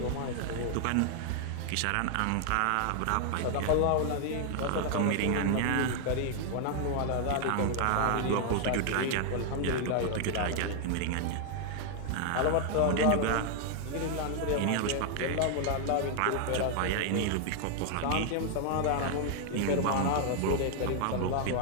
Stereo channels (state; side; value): different; both; correlation 0.00